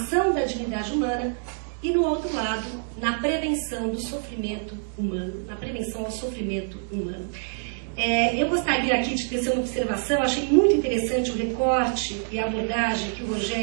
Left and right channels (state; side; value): silent; left; digital silence